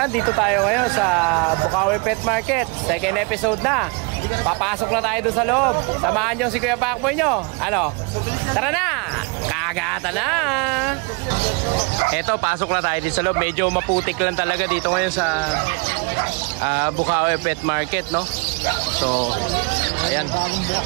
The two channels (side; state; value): left; quieter; 31.0 dB